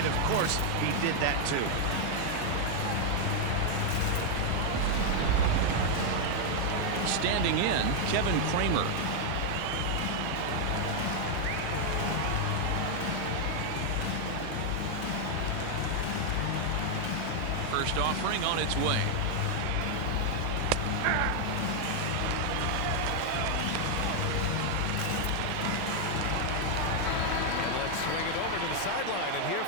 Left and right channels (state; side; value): different; both; correlation 0.00